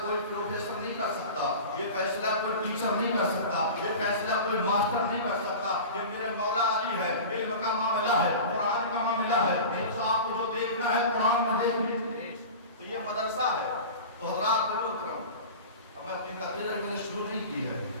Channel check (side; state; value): both; inverted; correlation -0.34